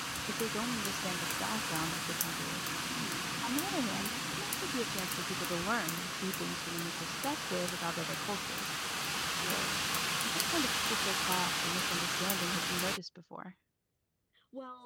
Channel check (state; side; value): identical; both; correlation 1.00